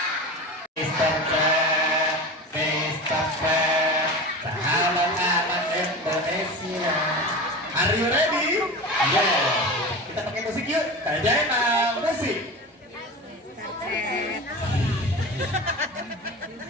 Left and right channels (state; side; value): normal; both; correlation 0.29